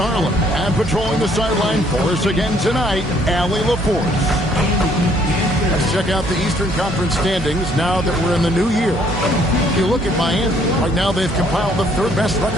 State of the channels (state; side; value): normal; both; correlation 0.64